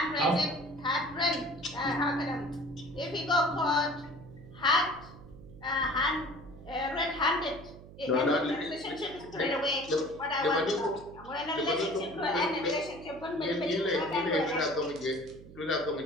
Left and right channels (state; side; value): noise; right; hum, 17 dB below the sound